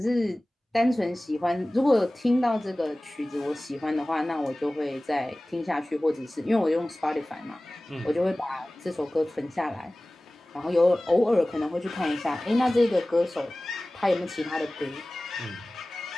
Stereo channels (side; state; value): both; normal; correlation 0.98